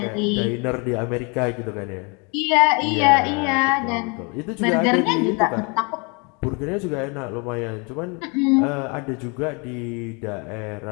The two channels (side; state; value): right; quieter; 32.1 dB